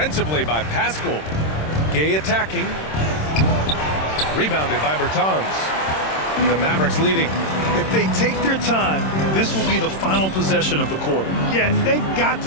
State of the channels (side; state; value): right; late; 26 ms